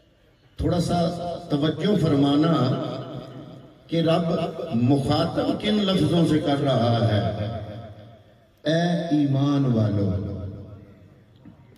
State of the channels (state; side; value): identical; both; correlation 1.00